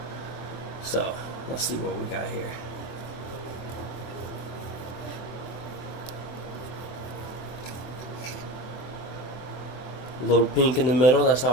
So let's see what we got here. A little pink in the middle, that's how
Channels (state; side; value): late; right; 23 ms